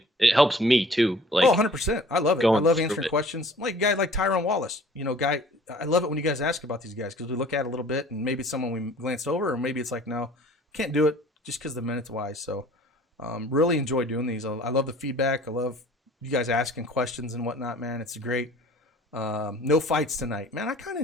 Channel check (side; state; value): both; normal; correlation 0.50